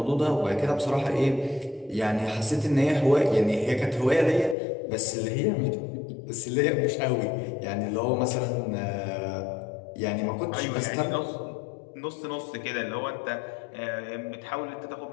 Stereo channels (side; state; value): right; drops out; at 4.5 s